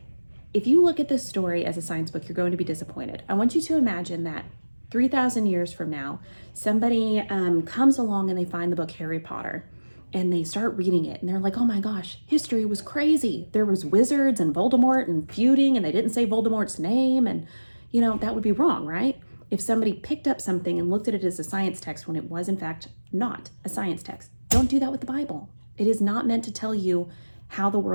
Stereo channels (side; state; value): both; inverted; correlation -1.00